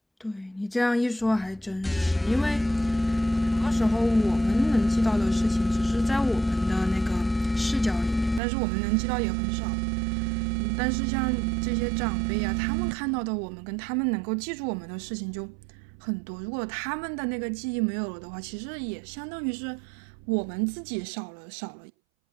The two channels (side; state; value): left; drops out; at 8.4 s